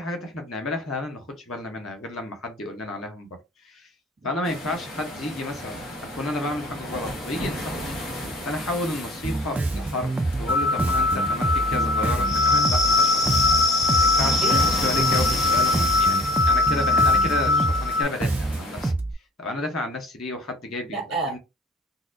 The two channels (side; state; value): both; normal; correlation 0.46